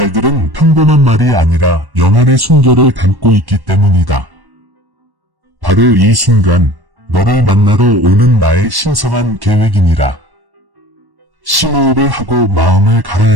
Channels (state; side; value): late; left; 1.1 ms